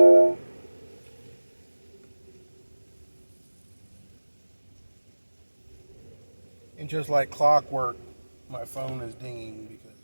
And just like clockwork, my phone is dinging because,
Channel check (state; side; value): inverted; both; correlation -1.00